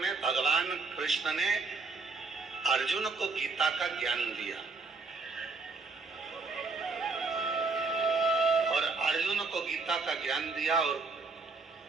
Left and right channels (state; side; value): quieter; left; 4.0 dB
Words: भगवान कृष्ण ने अर्जुन को गीता का ज्ञान दिया और अर्जुन को गीता का ज्ञान दिया और